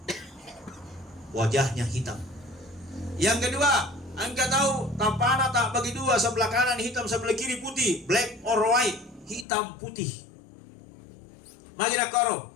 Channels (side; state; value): right; drops out; at 9.5 s